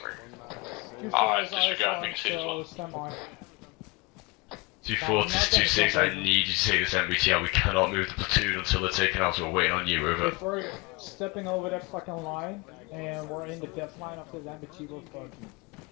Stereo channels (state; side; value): quieter; right; 24.1 dB